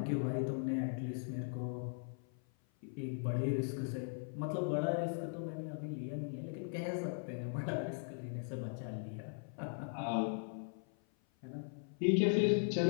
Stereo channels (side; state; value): right; silent; 52 dB below the other